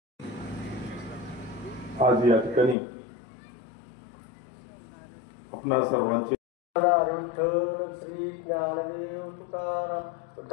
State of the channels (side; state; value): right; drops out; at 2.8 s